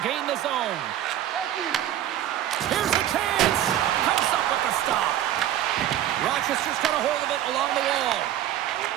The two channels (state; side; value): quieter; left; 12.1 dB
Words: gain the zone. Here's a chance. Comes up with the stop. Rochester's got a hold of it along the wall.